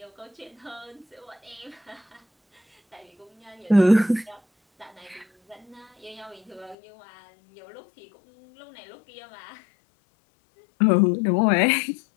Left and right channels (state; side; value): drops out; right; at 6.8 s